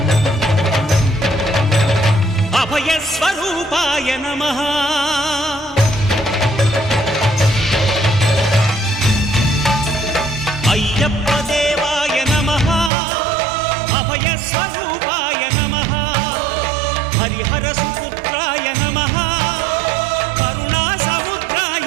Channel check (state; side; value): drops out; left; at 12.9 s